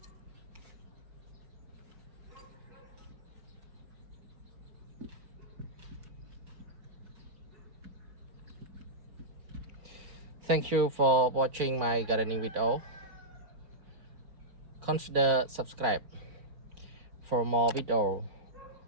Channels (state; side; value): late; left; 4.4 ms